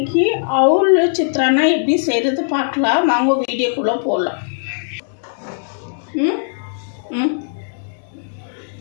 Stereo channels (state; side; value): silent; right; digital silence